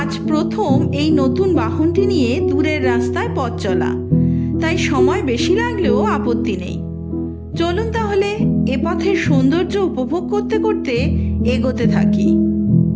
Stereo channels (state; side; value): identical; both; correlation 1.00